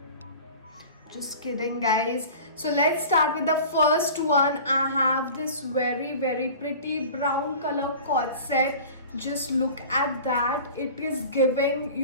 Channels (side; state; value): both; inverted; correlation -0.39